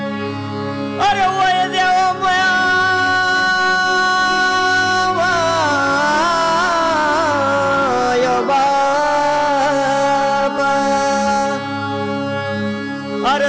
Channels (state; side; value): identical; both; correlation 1.00